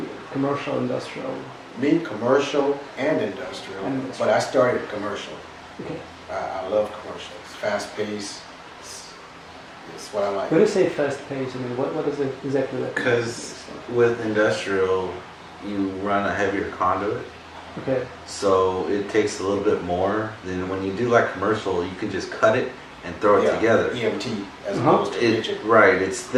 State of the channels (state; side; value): identical; both; correlation 1.00